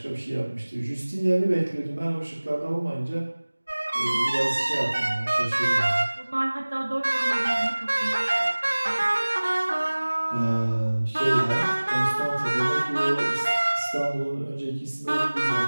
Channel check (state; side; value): inverted; both; correlation -1.00